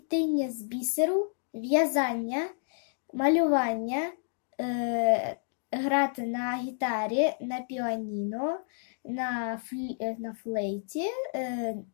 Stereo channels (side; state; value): right; silent; digital silence